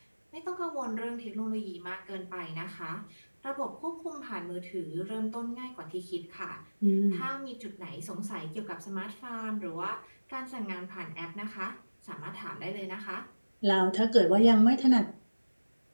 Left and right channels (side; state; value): both; inverted; correlation -1.00